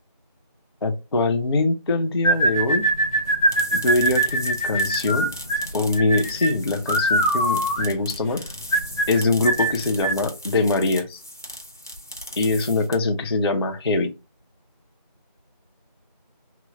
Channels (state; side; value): inverted; both; correlation -0.44